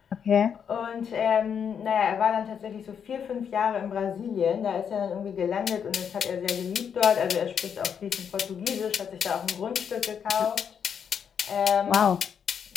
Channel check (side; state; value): right; quieter; 7.6 dB